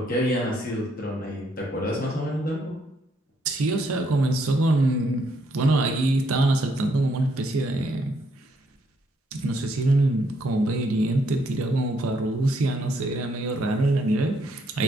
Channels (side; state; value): both; normal; correlation 0.72